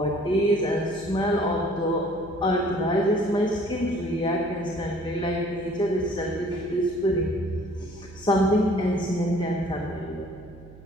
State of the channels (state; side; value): noise; right; hum, 20 dB below the sound